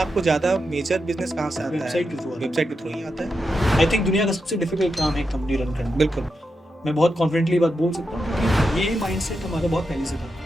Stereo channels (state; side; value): normal; both; correlation 0.87